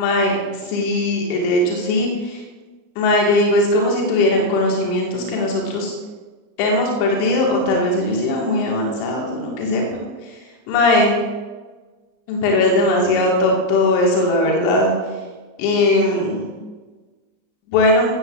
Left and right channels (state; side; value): late; right; 34 ms